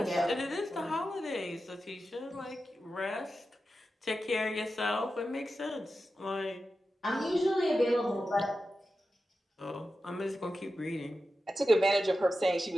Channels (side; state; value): both; normal; correlation 0.91